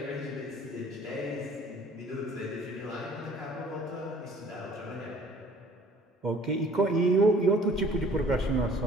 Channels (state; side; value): normal; both; correlation 0.53